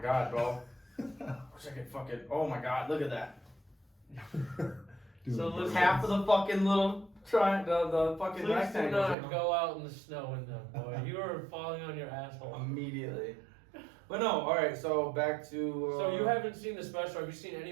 bro. Wish I could fucking. Oh my god, look at that. Dude, So listen- Half of the fucking little the fucking Please do rectangle. not go out in the snow in them, boy. You are falling on your asshole. Immediately. But no, alright, so back to. So you haven't seen the special. Have you seen any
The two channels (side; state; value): left; drops out; at 9.2 s